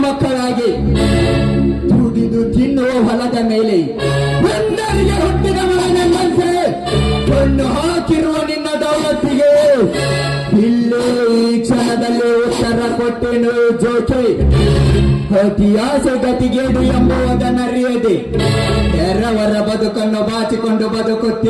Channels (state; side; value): identical; both; correlation 1.00